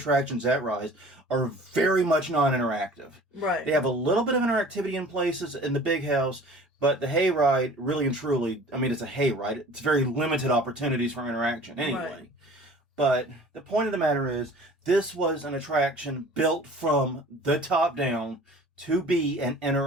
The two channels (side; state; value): both; normal; correlation 0.46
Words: at Rise are very much non-interactive. Right. They have a little bit of interactivity in places in the big house, but the hayride, really and truly, I mean, it's a hayride. It's very limited opportunities for interaction anyway. Right. But the point of the matter is, this was an attraction built from the top down to be an